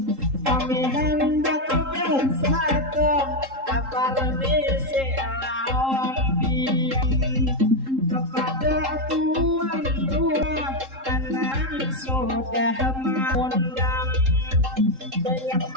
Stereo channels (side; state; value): left; late; 3.8 ms